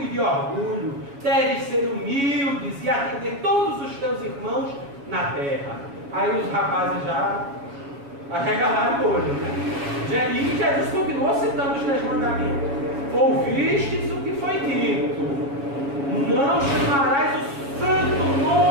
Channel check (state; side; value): late; left; 7.2 ms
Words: de orgulho. Deves ser humildes e atender todos os teus irmãos na terra. Aí os rapazes já arregalaram o olho, né? E Jesus continuou citando os 10 mandamentos. Ouvistes o que foi dito, não chamarás o santo